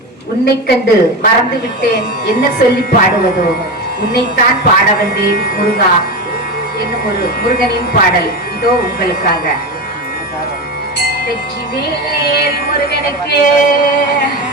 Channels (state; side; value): normal; both; correlation 0.20